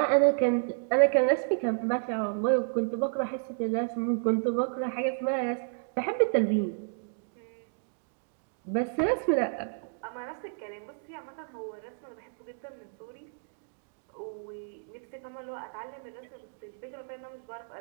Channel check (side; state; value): left; silent; digital silence